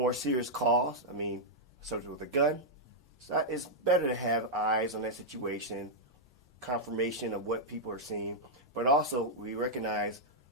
serious calls. Subject with a gun. So it's better to have eyes on that situation, confirmation of what people are seeing, but also we recognize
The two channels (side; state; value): both; normal; correlation -0.05